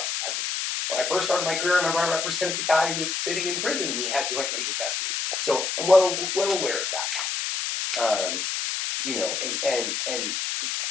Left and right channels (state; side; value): noise; left; hiss, 1 dB below the sound